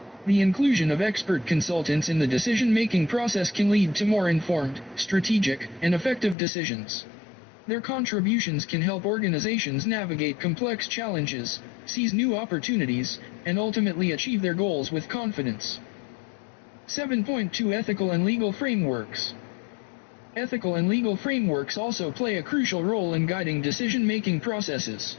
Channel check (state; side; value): drops out; right; at 6.4 s